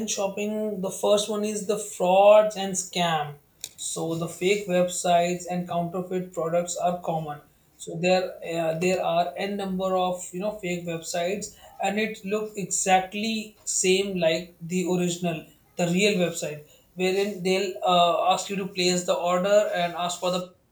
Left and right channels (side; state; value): both; identical; correlation 1.00